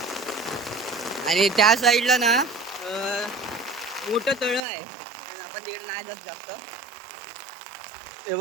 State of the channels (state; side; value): drops out; left; at 4.6 s